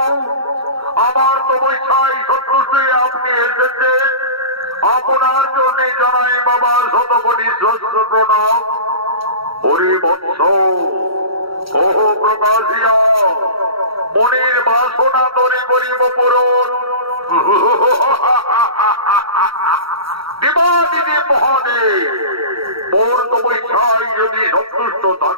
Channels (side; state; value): left; late; 0.75 ms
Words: আমার তপস্যায় সন্তুষ্ট আপনি এসেছেন। আপনার জন্য জানাই বাবা শতকোটি সহস্র প্রণাম। হরি বৎস কহ প্রকাশিয়া মনের বাসনা তরে করিব পূরণ। দেবাদিদি মহাদেব মোর তপস্যায় যদি সন্তুষ্ট